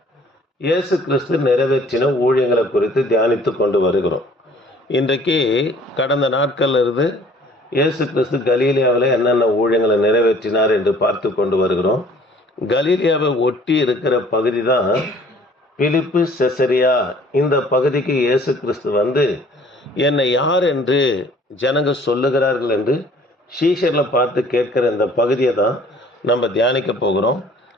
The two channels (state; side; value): normal; both; correlation 0.54